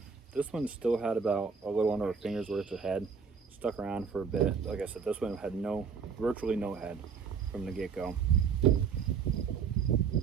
This one still had about a little under a finger's worth of head. Stuck around for a bit. Like I said, this one had virtually no head from the get-go.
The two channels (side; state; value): left; quieter; 6.1 dB